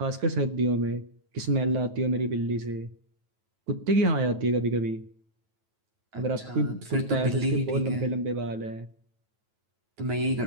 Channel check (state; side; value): late; left; 9.2 ms